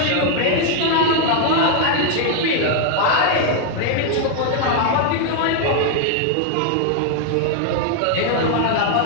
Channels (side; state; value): both; different; correlation 0.00